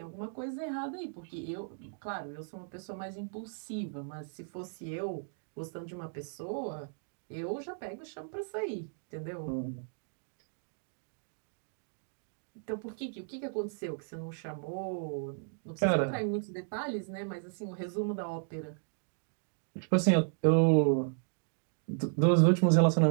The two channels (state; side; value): silent; left; digital silence